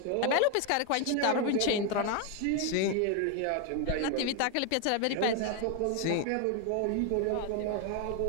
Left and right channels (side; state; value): both; different; correlation 0.01